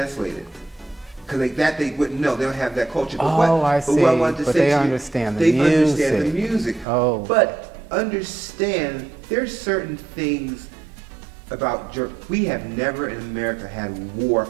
it. Because they wouldn't know. They don't have that culture. But I see. But they understand the music. They understand the music. Oh. But understand, there's certain things about we have never in America had war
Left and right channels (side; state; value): left; drops out; at 6.9 s